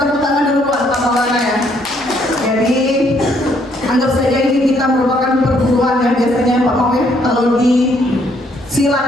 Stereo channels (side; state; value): both; normal; correlation 0.68